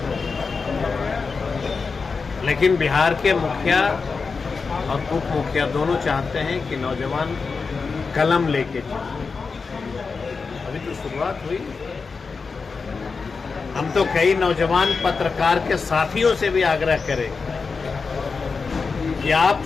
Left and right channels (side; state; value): right; quieter; 4.8 dB